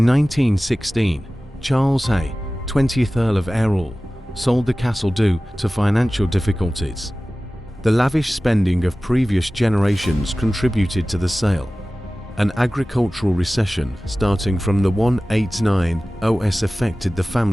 1916, Charles Hay, 20th Earl of Errol, sold the castle due to financial difficulties. The lavish spending of previous generations contributed to the sale. An agricultural recession starting from the 189 OS affected the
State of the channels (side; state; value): both; normal; correlation 0.97